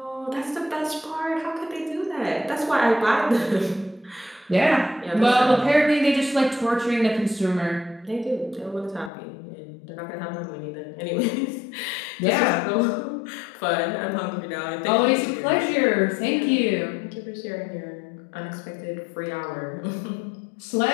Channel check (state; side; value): drops out; right; at 9.1 s